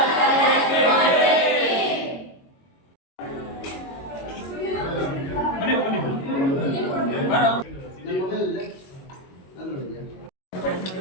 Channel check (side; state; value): right; late; 22 ms